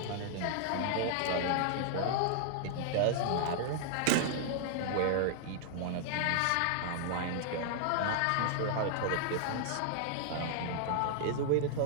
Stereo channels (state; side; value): different; both; correlation -0.01